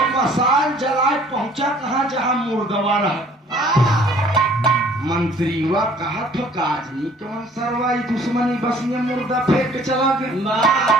मसाल जलाए पहुंचा कहा जहां मुर्दवा रहा। मंत्रीवा कहा तो काजनी कौन सरवाई दुश्मनी बस ये मुर्दा फेंक के चला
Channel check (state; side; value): normal; both; correlation 0.55